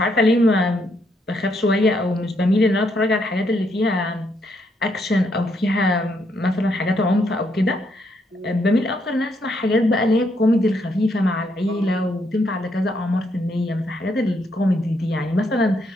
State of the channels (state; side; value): normal; both; correlation 0.75